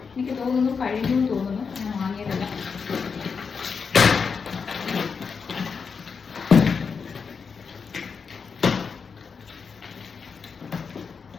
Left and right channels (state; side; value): quieter; right; 5.7 dB